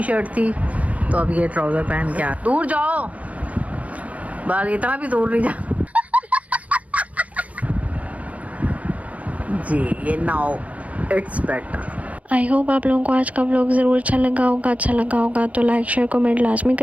शर्ट थी, तो अब ये ट्राउजर पहन के आ। दूर जाओ, बाल इतना भी दूर नहीं जा। जी ये now it's better. I hope आप लोगों को आज का व्लॉग ज़रूर अच्छा लगा होगा तो लाइक शेयर कमेंट लाजमी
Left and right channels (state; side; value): late; left; 0.068 ms